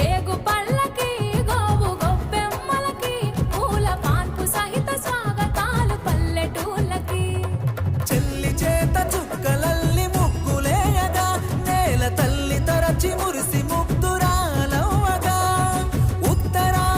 పళ్ళకి గోవు గొబ్బెమ్మలకి పూల పాన్పు సహిత స్వాగతాలు పల్లెటూళ్ళకి చెల్లి చేత చుక్కలల్లి ముగ్గులేయగా నేల తల్లి తరచి మురిసి ముగ్ధురాలవ్వగా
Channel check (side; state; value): both; identical; correlation 1.00